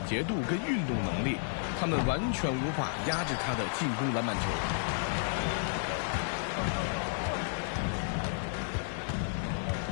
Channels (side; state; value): right; silent; 56 dB below the other